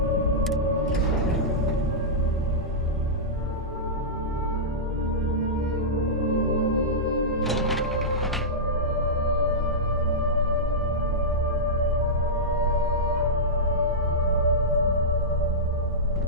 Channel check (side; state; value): both; normal; correlation -0.12